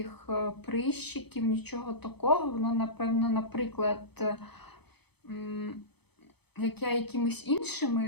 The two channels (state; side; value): late; right; 0.98 ms